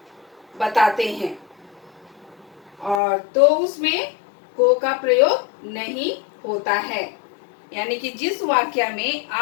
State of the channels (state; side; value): drops out; right; at 3.0 s